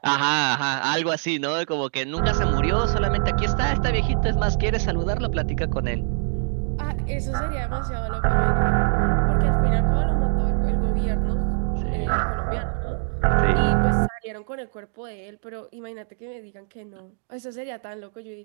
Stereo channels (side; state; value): left; silent; 63 dB below the other